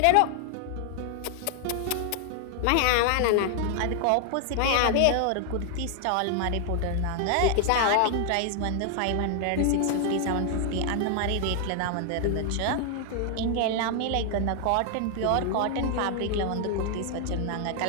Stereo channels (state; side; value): different; both; correlation 0.00